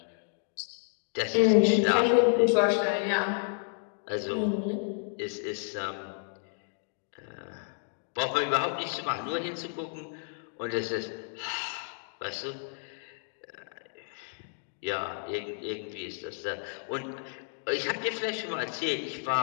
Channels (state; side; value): silent; right; 57 dB below the other